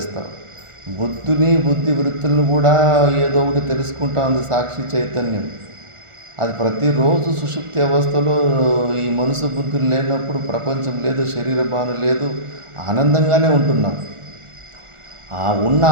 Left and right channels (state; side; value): late; left; 1.4 ms